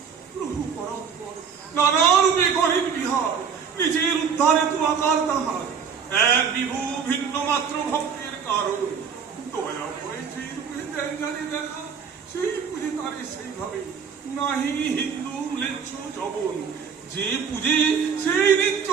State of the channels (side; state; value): left; quieter; 6.6 dB